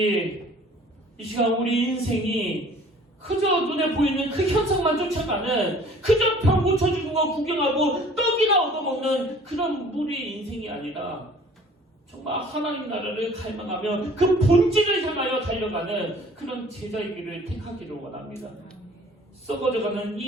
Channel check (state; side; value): normal; both; correlation 0.51